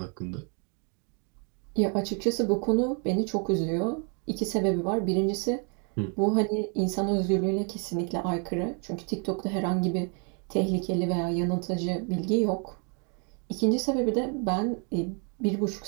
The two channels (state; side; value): quieter; left; 38.1 dB